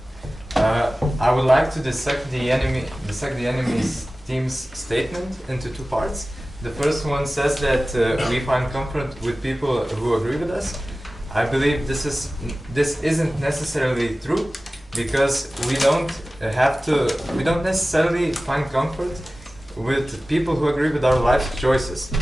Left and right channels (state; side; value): normal; both; correlation 0.96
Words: I would like to dissect the enemy's team's statement into 2 parts. The first one says that we find comfort with people who agree with us. I believe this isn't necessarily true, because we don't necessarily find comfort with people who agree with our life choices.